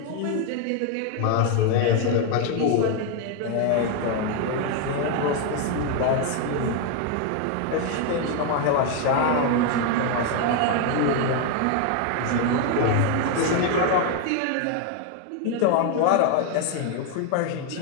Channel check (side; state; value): both; different; correlation 0.01